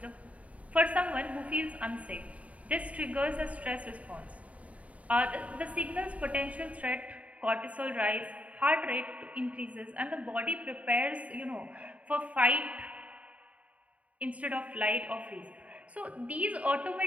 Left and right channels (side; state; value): left; late; 0.067 ms